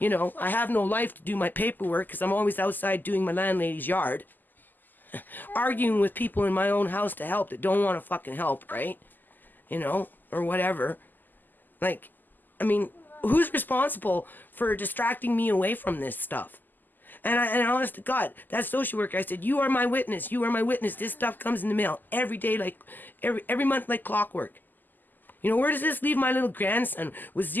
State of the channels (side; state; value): right; late; 0.087 ms